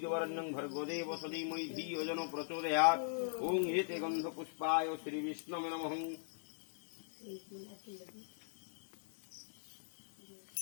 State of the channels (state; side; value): silent; right; digital silence